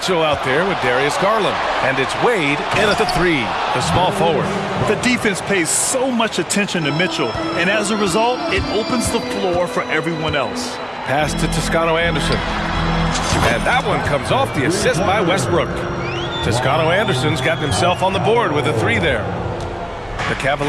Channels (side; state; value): both; identical; correlation 1.00